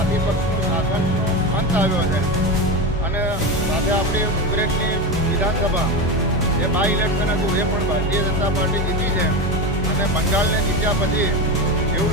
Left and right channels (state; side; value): normal; both; correlation 0.19